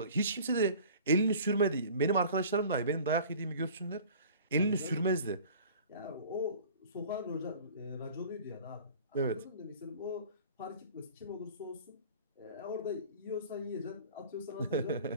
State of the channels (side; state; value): both; inverted; correlation -0.44